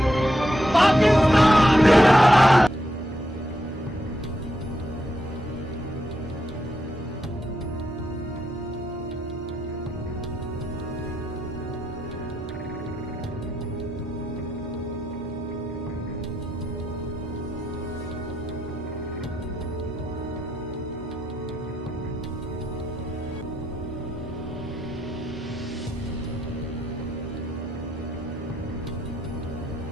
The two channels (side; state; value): both; normal; correlation 0.82